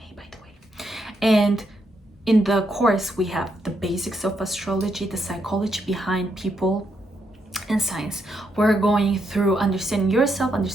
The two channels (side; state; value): both; normal; correlation 0.79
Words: by the way. And in the course, we have the basics of astrology, the psychology behind people and signs. We're going through understanding yourself,